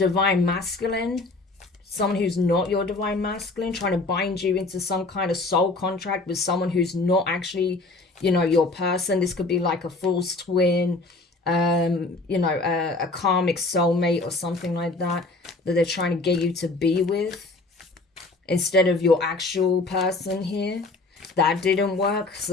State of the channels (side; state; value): right; quieter; 3.3 dB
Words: masculine. Someone who's not your divine masculine, trying to bind you into some kind of soul contract with someone who's not actually, you know, your person. This could be like a false twin, you know, a karmic soulmate or something like that they're trying to get you to be with instead of your actual person here. That didn't work,